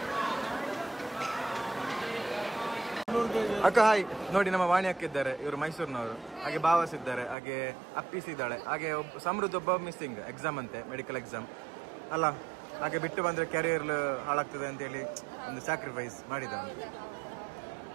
ಅಕ್ಕ ಹಾಯ್ ನೋಡಿ, ನಮ್ಮ ವಾಣಿ ಅಕ್ಕ ಇದ್ದಾರೆ, ಇವರು ಮೈಸೂರಿನವರು. ಹಾಗೆ ಭಾವಸ್ ಇದ್ದಾರೆ, ಹಾಗೆ ಅಪ್ಪೀಸ್ ಇದ್ದಾಳೆ, ಹಾಗೆ ಸಮೃದ್ಧ ಒಬ್ಬ ಮಿಸ್ಸಿಂಗ್ ಎಕ್ಸಾಮ್ ಅಂತೆ, ಮೆಡಿಕಲ್ ಎಕ್ಸಾಮ್ ಅಲ್ಲ. ಹಾಗೆ ಬಿಟ್ಟು ಬಂದ್ರೆ ಕ್ಯಾರಿಯರ್ ಹಾಳಾಗ್ತದೆ ಅಂತೇಳಿ ಒಂದು ಸ್ಯಾಕ್ರಿಫೈಸ್ ಮಾಡಿದ.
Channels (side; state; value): left; drops out; at 7.4 s